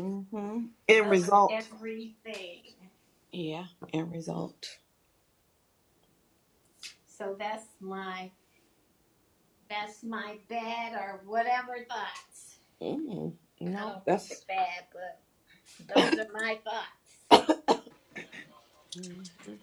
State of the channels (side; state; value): both; identical; correlation 1.00